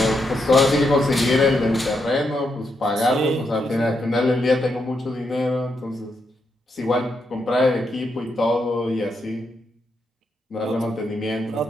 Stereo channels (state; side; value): normal; both; correlation 0.81